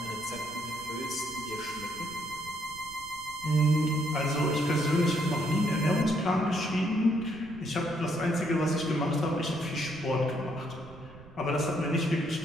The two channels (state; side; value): noise; right; rumble, 20 dB below the sound